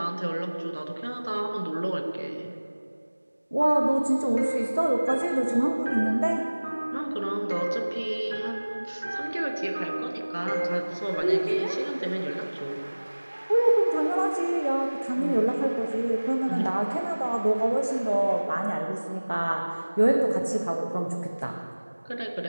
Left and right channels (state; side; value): inverted; both; correlation -1.00